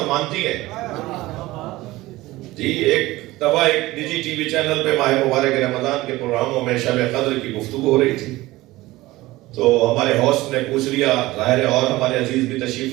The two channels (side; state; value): left; quieter; 18.6 dB